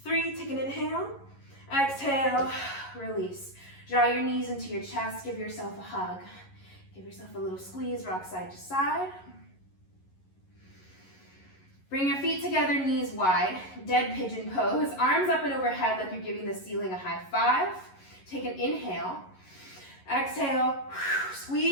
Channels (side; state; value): right; late; 11 ms